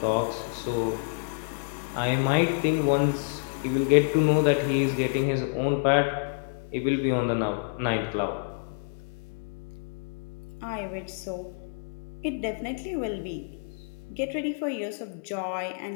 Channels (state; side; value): silent; right; digital silence